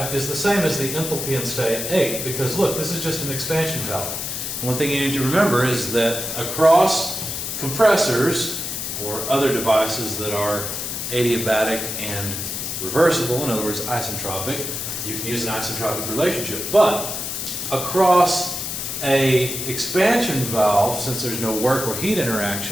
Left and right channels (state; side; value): noise; left; hiss, 4 dB below the sound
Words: is the same as the enthalpy in state 8, because look, this is just an expansion valve. One thing you need to remember is that across compressors or other devices that are adiabatic and reversible, in other words, isentropic, you can use an isentropic relationship. But across a expansion valve, since there's no work or heat